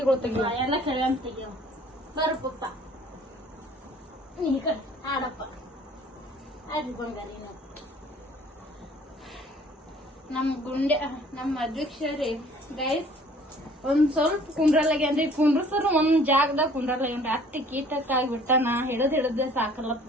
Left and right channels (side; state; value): both; normal; correlation 0.54